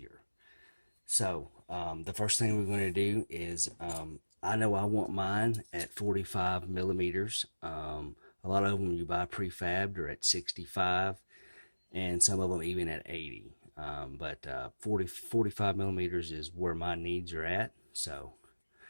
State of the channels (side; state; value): both; inverted; correlation -1.00